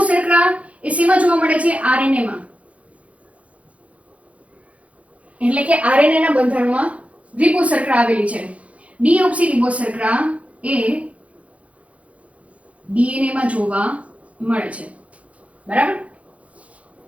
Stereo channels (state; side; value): late; left; 0.065 ms